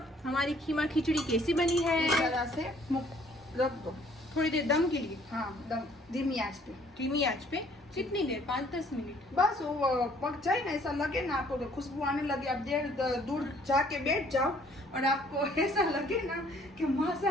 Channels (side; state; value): both; normal; correlation 0.60